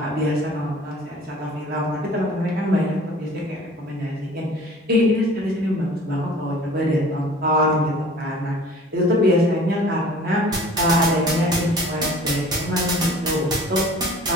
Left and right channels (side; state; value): both; normal; correlation 0.47